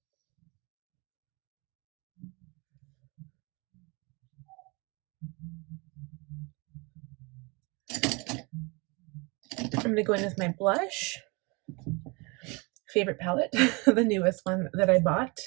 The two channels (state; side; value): quieter; left; 28.5 dB